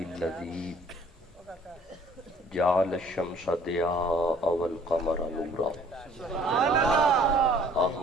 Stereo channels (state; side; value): normal; both; correlation 0.55